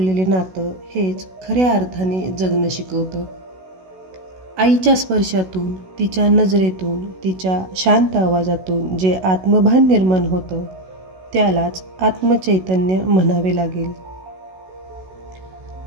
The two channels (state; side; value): late; left; 16 ms